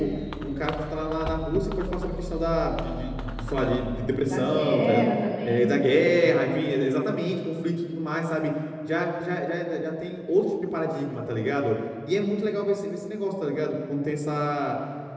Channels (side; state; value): both; identical; correlation 1.00